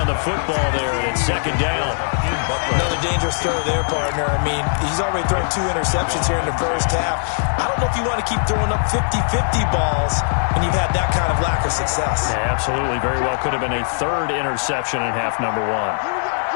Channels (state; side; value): silent; right; digital silence